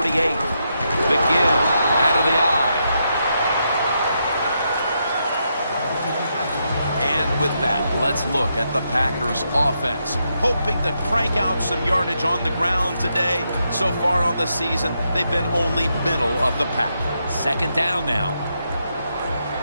The give out of the eye. And with that, let's look at the Packers offense. Hoping to crank out some yardage on the ground today. So far on the season, they've been only middle of the pack. Second down now.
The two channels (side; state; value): both; inverted; correlation -0.81